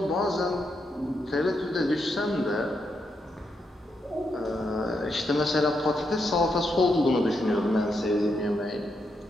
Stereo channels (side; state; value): both; normal; correlation 0.81